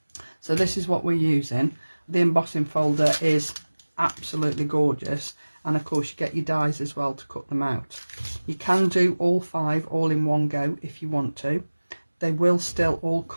so this is what we're using. The embossing folder is absolutely gorgeous, and of course you get your dies as well to cut them out. You can do all 5 all in one go if you want to. They will still all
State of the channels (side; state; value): both; inverted; correlation -1.00